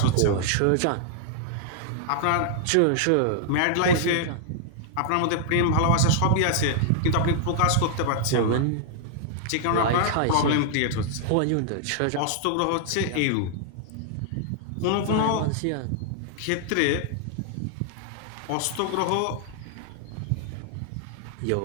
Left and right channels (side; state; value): both; different; correlation -0.01